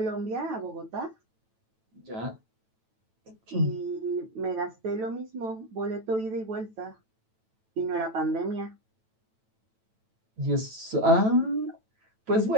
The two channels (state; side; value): late; left; 9.1 ms